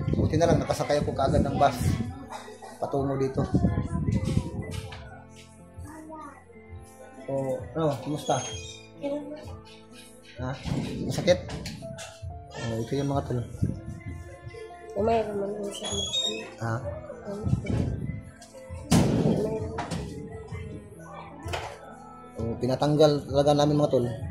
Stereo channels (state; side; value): identical; both; correlation 1.00